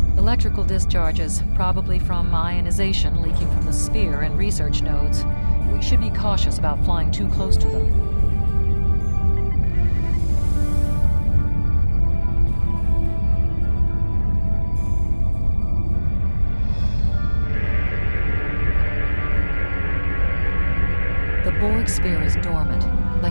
Electrical discharges, probably from ionization leaking from the sphere and research nodes. We should be cautious about flying too close to them. The Borg sphere is dormant,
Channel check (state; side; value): inverted; both; correlation -1.00